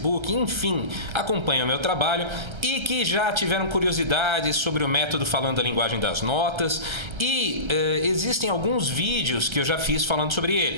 enfim, acompanham o meu trabalho e que já tiveram curiosidades sobre o método falando a linguagem das notas e existem alguns vídeos que eu já fiz falando sobre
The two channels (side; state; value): left; late; 1.3 ms